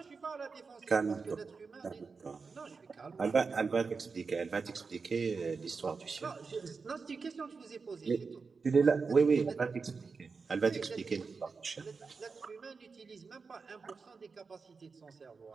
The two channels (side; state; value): left; quieter; 4.8 dB